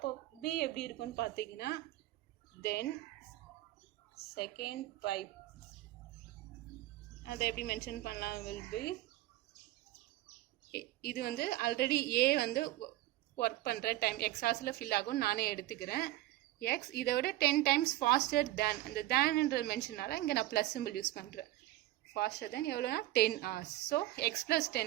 பி எப்படி இருக்குன்னு பார்த்தீங்கன்னா தென் செகண்ட் பைப் அதை எப்படி மென்ஷன் பண்ணலாம், வில் பி, இது வந்து ஆல்ரெடி ஏ வந்து ஒர்க் பண்ணுற டைம் எக்ஸ் ஹார்ஸில் ஃபில் ஆகும் நானே எடுத்துக்கிறேன். எக்ஸ் இதை விட 10 times ஃபாஸ்டர் தேன், அந்த தேன்ன்ற மென்ஷனால இங்கே நான் ப்ளஸ் சிம்பிள் யூஸ் பண்ணுறேன். ஃபாஸ்டர் தென் எவ்வளோனா 10 hours. ஸோ எக்ஸ் ப்ளஸ்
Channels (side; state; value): left; quieter; 16.2 dB